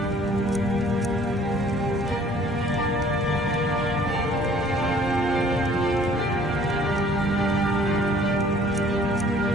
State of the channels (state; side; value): normal; both; correlation 0.56